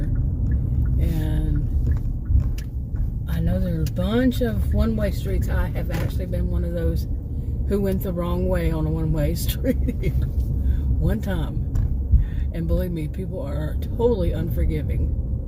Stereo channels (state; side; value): identical; both; correlation 1.00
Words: and I know there's a bunch of one-way streets. I have actually been one of those who went the wrong way on a one-way street one time, and believe me, people are totally unforgiving.